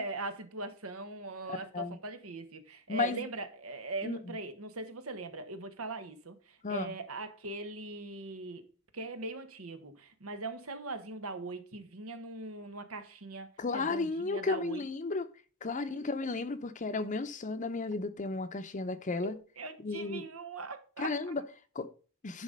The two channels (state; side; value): normal; both; correlation 0.10